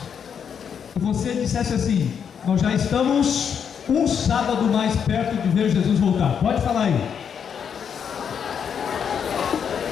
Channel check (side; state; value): right; quieter; 7.5 dB